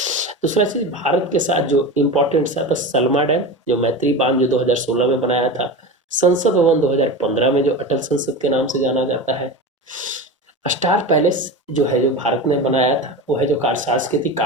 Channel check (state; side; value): normal; both; correlation 0.26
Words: दूसरा चीज़ भारत के साथ जो इम्पोर्टेंट सा था सलमा डैम, जो मैत्री बांध जो 2016 में बनाया था। संसद भवन 2015 में जो अटल संसद के नाम से जाना जाता है। स्टार पैलेस जो है जो भारत ने बनाया था, वो है जो सांस्कृतिक